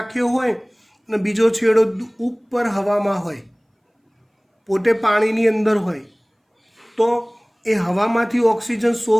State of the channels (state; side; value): identical; both; correlation 1.00